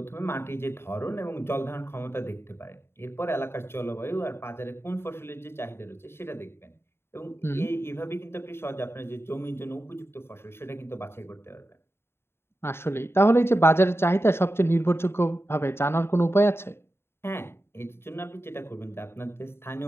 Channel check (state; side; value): late; right; 0.12 ms